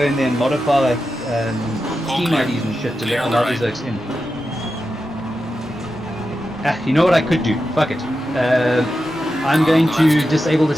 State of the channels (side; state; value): both; normal; correlation 0.90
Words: in there and modify Steam IDs and shit to allow these folks in. You know what I could do? Fuck it. I'm going to disable the